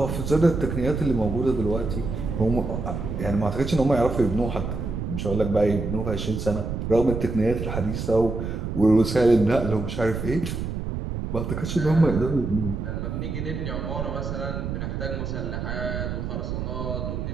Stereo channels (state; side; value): noise; right; rumble, 4 dB below the sound